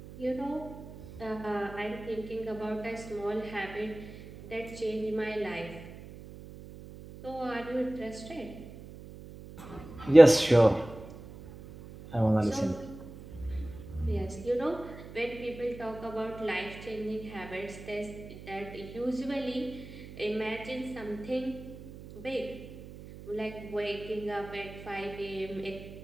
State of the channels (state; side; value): noise; right; hum, 15 dB below the sound